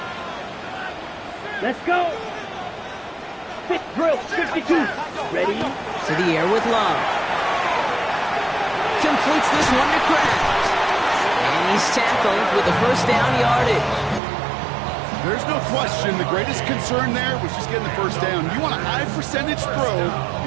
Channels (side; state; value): left; drops out; at 14.2 s